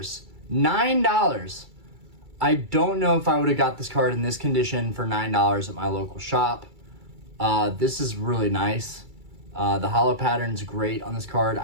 $9. I don't know if I would have got this card in this condition for $9 at my local shop. This is really nice. The holo pattern's great on this card.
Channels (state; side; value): late; left; 2.3 ms